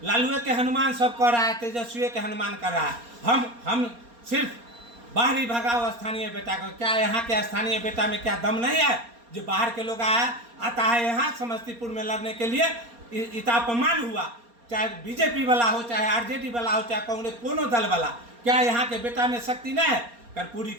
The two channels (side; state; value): left; late; 4.3 ms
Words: लालुए के हनुमान सब कर रहा है, तेजस्वी के हनुमान कर रहा है। हम सिर्फ बाहरी भगाओ स्थानीय बेटा को। क्या यहाँ के स्थानीय बेटा में क्या दम नहीं है जो बाहर के लोग आता है यहाँ समस्तीपुर में लड़ने के लिए? इतना अपमान हुआ, चाहे बीजेपी वाला हो, चाहे आरजेडी वाला हो, चाहे कांग्रेस, कोनो दल वाला, क्या यहाँ के बेटा में शक्ति नहीं है? कर्पूरी